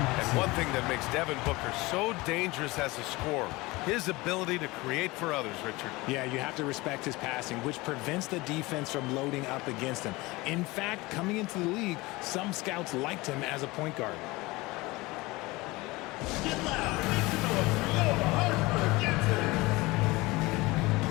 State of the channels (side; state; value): right; quieter; 21.9 dB